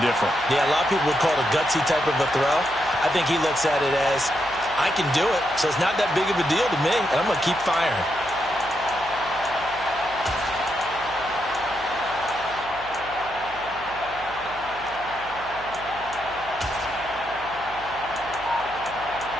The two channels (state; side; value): noise; right; hum, 19 dB below the sound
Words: different. Yeah, a lot of people would call it a gutsy type of a throw. I think he looks at it as, I can do it, so it's not that big of a deal to me, and I'm going to keep firing.